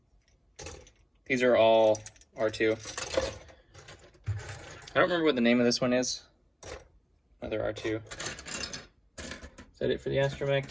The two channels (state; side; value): identical; both; correlation 1.00